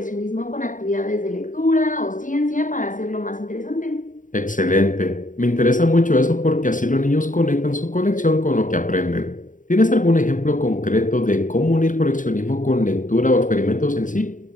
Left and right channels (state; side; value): late; right; 0.38 ms